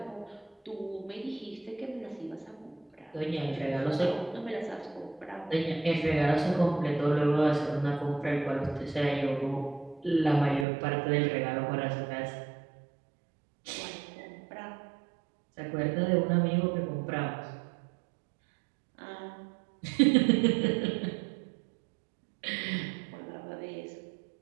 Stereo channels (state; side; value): drops out; left; at 10.7 s